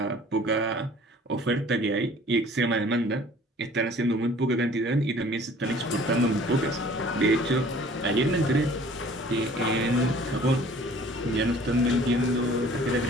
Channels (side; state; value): both; normal; correlation 0.51